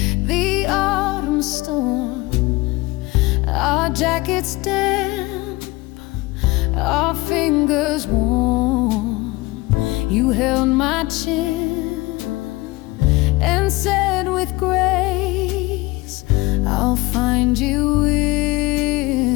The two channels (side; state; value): right; quieter; 21.4 dB